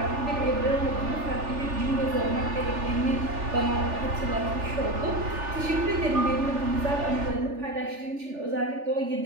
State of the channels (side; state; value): left; late; 3.4 ms